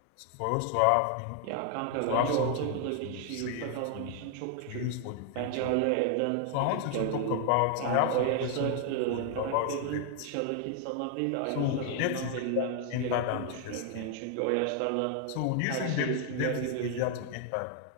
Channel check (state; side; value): different; both; correlation 0.00